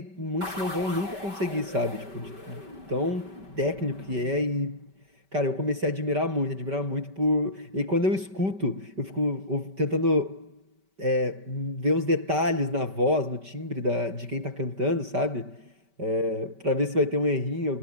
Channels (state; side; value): late; left; 5.2 ms